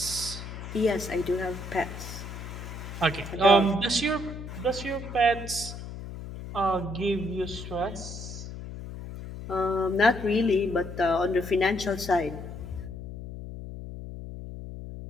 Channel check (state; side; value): noise; left; hum, 10 dB below the sound